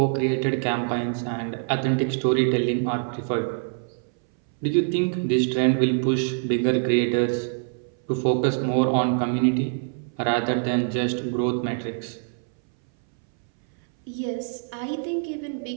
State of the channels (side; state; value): left; silent; 61 dB below the other